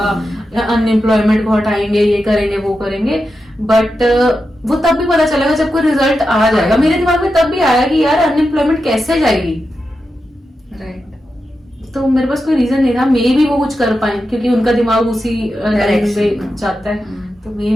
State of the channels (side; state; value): both; normal; correlation 0.89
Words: अनएम्प्लॉयमेंट को हटाएंगे, ये करेंगे, वो करेंगे, बट वो तब भी पता चलेगा जब कोई रिजल्ट आ जाएगा। मेरे दिमाग में तब भी आया कि यार अनएम्प्लॉयमेंट कैसे जाएगी, तो मेरे पास कोई रीजन नहीं था। मे भी वो कुछ कर पाए क्योंकि उनका दिमाग उसी में जाता है। तो मे